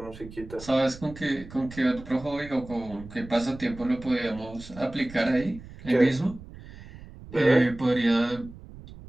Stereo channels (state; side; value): noise; right; rumble, 16 dB below the sound